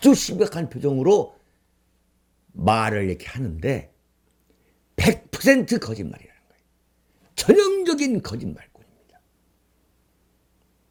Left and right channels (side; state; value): both; identical; correlation 1.00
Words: 심각한 표정으로 말을 이렇게 하는데 100% 거짓말이라는 거예요. 전형적인 거짓말꾼입니다.